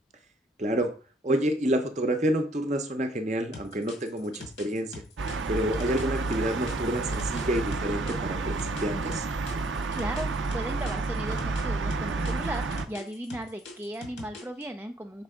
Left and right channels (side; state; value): both; normal; correlation 0.63